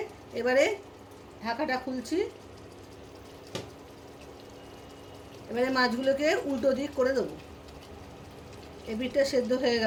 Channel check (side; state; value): both; identical; correlation 1.00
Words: এবারে ঢাকাটা খুলছি। এবারে মাছগুলোকে উল্টো দিক করে দেবো। এই পিঠটা সেদ্ধ হয়ে